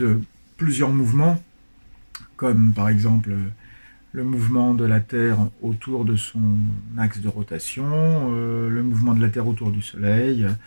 plusieurs mouvements, comme par exemple le mouvement de la Terre autour de son axe de rotation, le mouvement de la Terre autour du Soleil,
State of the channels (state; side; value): inverted; both; correlation -1.00